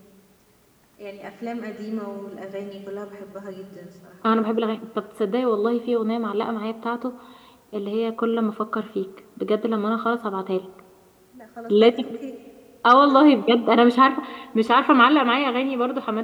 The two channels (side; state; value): both; identical; correlation 1.00